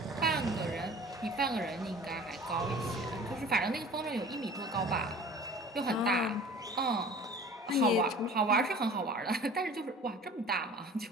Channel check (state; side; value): normal; both; correlation 0.44